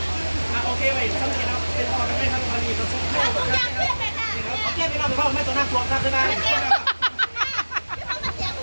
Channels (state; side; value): inverted; both; correlation -1.00